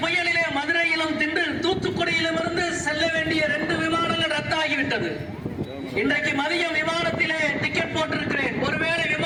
புயலிலே மதுரையிலும் தின்று தூத்துக்குடியிலும் இருந்து செல்ல வேண்டிய 2 விமானங்கள் ரத்தாகிவிட்டது. இன்றைக்கு மதியம் விமானத்திலே டிக்கெட் போட்டிருக்கிறேன். ஒருவேளை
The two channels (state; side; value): identical; both; correlation 1.00